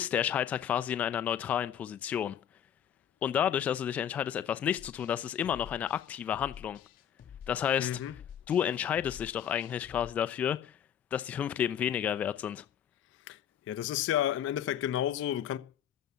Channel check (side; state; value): right; quieter; 9.5 dB